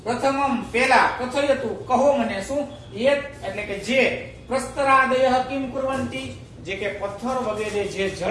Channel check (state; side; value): identical; both; correlation 1.00